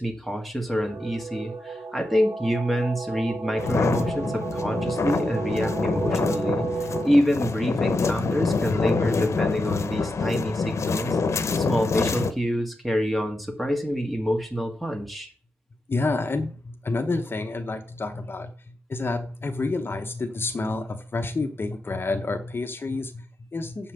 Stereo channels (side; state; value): both; normal; correlation 0.87